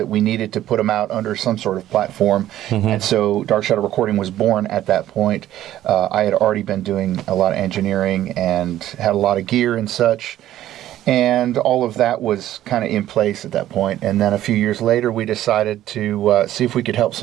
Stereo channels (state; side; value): quieter; left; 13.1 dB